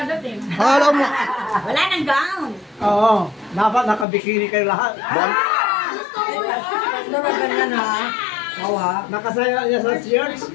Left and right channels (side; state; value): right; drops out; at 4.0 s